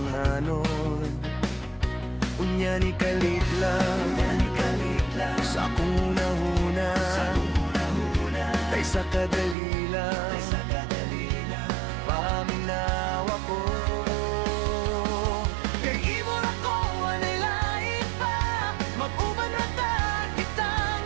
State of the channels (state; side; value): drops out; left; at 9.6 s